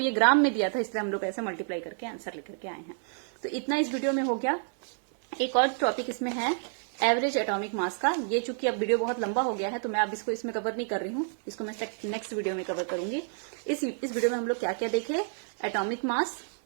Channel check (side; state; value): left; silent; digital silence